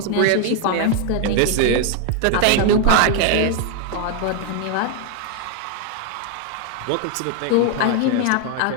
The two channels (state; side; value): different; both; correlation 0.01